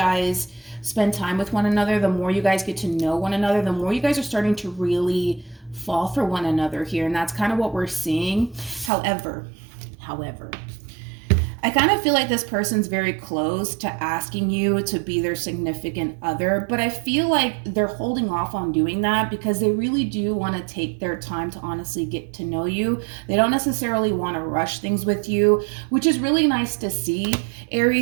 spend time with one another, the more you guys get to know one another, the more you guys are starting to really fall for one another here. And that's kind of what we're seeing. However, I kind of feel like this person's very close to asking you to be their significant other, but I feel like they're holding off on doing that because they really do want to take their time to honestly get to know you. They don't necessarily want to rush things with you, which is really nice to see,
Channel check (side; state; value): left; drops out; at 8.9 s